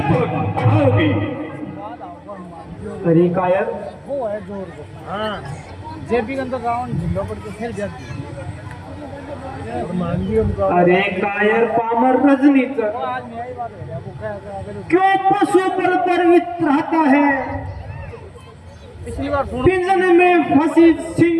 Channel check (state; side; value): identical; both; correlation 1.00